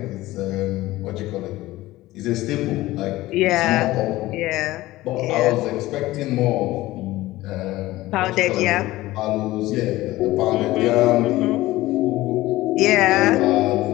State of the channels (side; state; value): right; quieter; 17.5 dB